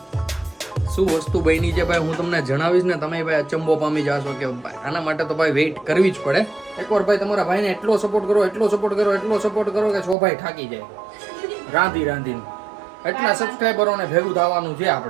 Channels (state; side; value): drops out; left; at 10.2 s